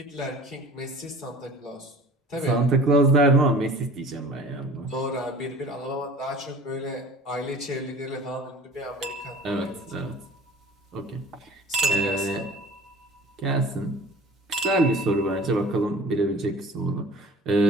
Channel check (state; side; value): normal; both; correlation 0.45